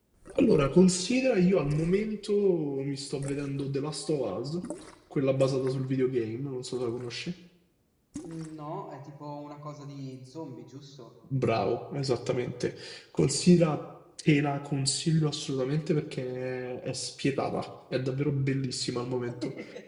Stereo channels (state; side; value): identical; both; correlation 1.00